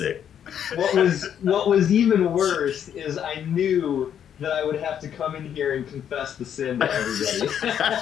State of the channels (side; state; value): right; quieter; 9.1 dB